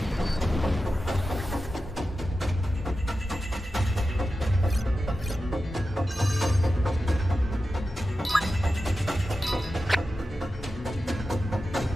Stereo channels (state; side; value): normal; both; correlation 0.92